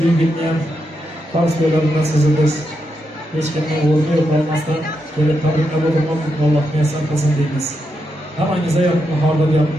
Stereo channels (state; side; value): normal; both; correlation 0.84